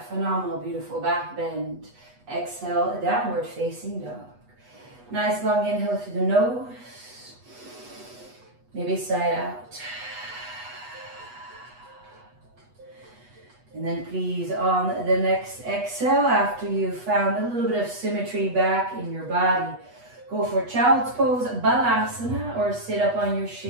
phenomenal, beautiful back bend. Exhale, downward facing dog. Nice long inhale through the nose. Maybe side out. And then please on the next exhale, after you've found a little bit of symmetry back in your body, go for child's pose, balasana, or sit up on your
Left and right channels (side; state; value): left; late; 8.2 ms